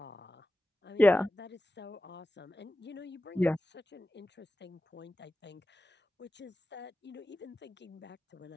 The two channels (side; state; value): both; normal; correlation 0.93